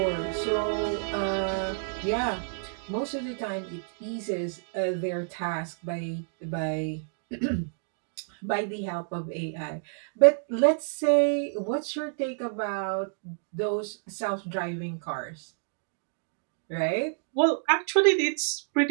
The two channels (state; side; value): silent; left; digital silence